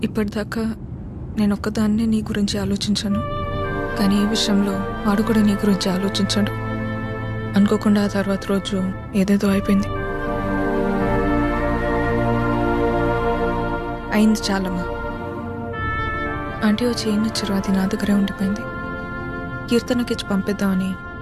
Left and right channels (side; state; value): both; identical; correlation 1.00